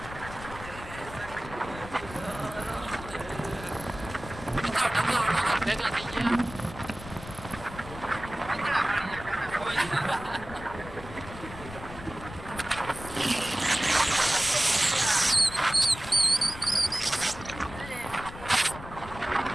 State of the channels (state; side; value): noise; left; rumble, 13 dB below the sound